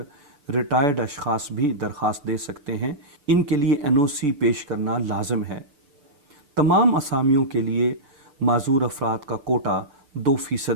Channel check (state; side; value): late; left; 6.8 ms